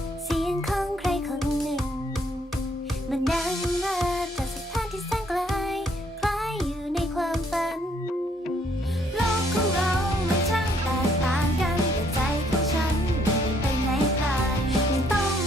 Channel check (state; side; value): normal; both; correlation 0.66